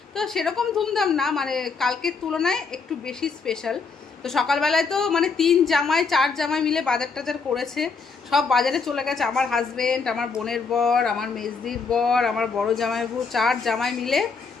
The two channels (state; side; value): quieter; right; 4.9 dB